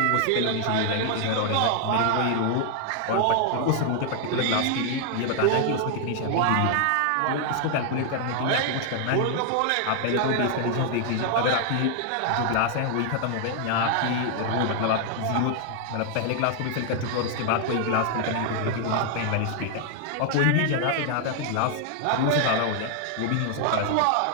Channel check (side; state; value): both; different; correlation 0.00